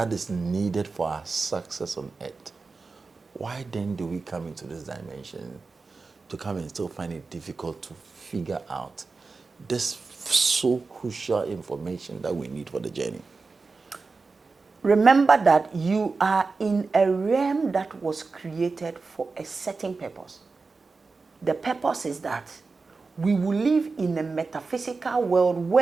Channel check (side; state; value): left; quieter; 4.2 dB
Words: is needed for our success on earth, why then do we come into this dimension to come and still find it difficult to figure out this so crucial information that we need for the journey? Remember that you are in a realm that was created for a certain purpose. The purpose is that we will live in a metaphysical world